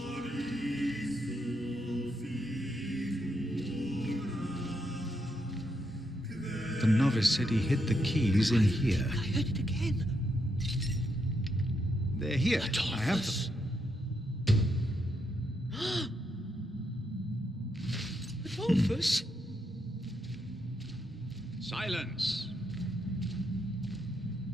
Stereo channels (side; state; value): both; normal; correlation 0.80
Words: The novice said he hid the keys in here. I heard it again. They're here. Adolphus. I have them. Adolphus? Silence.